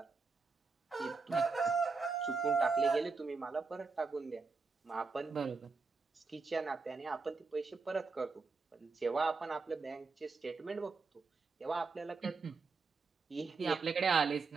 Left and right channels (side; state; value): left; quieter; 4.4 dB